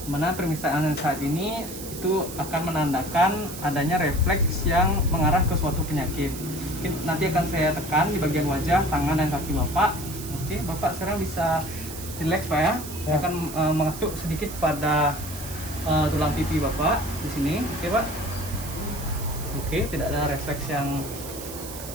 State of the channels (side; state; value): right; noise; hiss, 11 dB below the sound